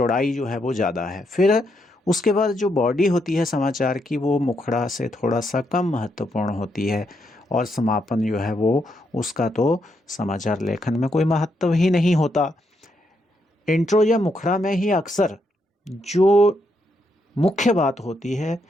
जो है वो ज़्यादा है। फिर उसके बाद जो बॉडी होती है समाचार की वो मुखड़ा से थोड़ा सा कम महत्वपूर्ण होती है, और समापन जो है वो उसका तो समाचार लेखन में कोई महत्व ही नहीं होता। इंट्रो या मुखड़ा में ही अक्सर जो मुख्य बात होती है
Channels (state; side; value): normal; both; correlation 0.78